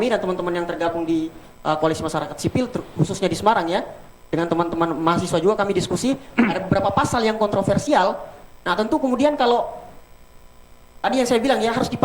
dan teman-teman yang tergabung di Koalisi Masyarakat Sipil, khususnya di Semarang ya, dengan teman-teman mahasiswa juga kami diskusi, ada beberapa pasal yang kontroversial. Nah tentu kemudian kalau tadi yang saya bilang ya harus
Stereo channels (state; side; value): identical; both; correlation 1.00